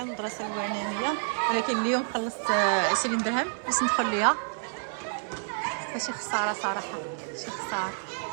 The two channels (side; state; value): left; silent; digital silence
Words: المدرسه البعنانيه ولكن اليوم خلصت 20 درهم باش ندخل ليها. ماشي خساره صراحه، شي خساره.